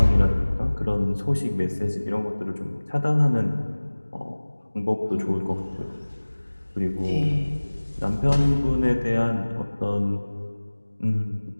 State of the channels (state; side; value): inverted; both; correlation -1.00